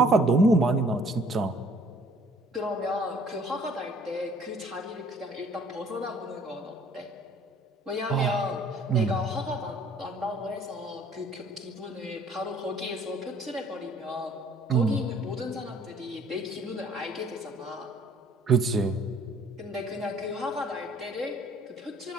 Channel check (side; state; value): both; normal; correlation 0.57